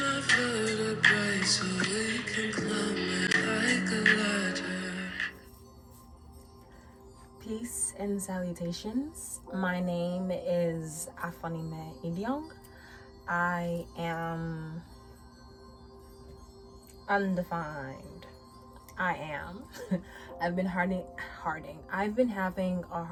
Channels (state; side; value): identical; both; correlation 1.00